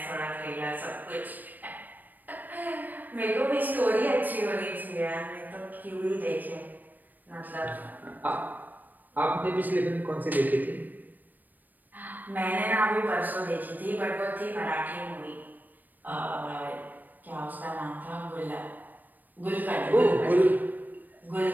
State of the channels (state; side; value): late; left; 0.087 ms